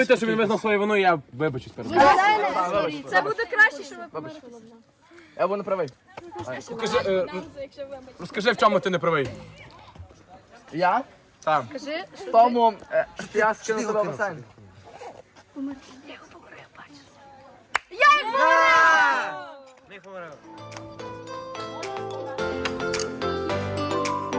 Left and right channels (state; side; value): identical; both; correlation 1.00